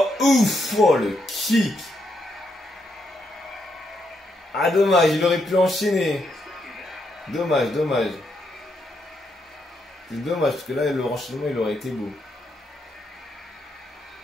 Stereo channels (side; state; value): both; normal; correlation 0.79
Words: ouf. Oh, le kick. Ah, dommage, il aurait pu enchaîner. Dommage, dommage. C'est dommage, parce que là, le renchaînement, il aurait été beau.